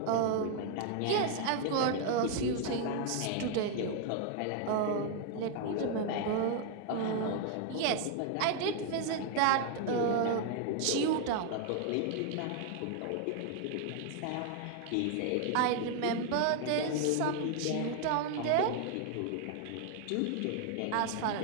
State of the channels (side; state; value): both; different; correlation 0.00